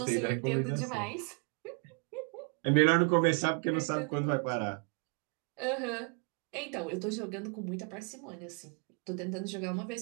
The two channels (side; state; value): left; quieter; 36.7 dB